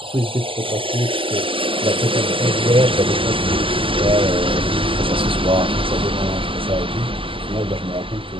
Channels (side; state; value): left; late; 0.25 ms